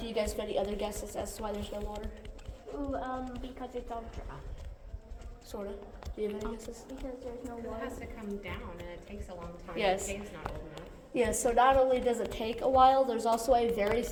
you guys have any other guesses as to why there's no water? Ooh, because it's all dry. Sort of. Do you have any guesses? Because there's no It water. has to come down and it takes a long time. Yes. The cave's not old enough. Yeah, so not only does it take a while, there's also a very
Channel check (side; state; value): both; identical; correlation 1.00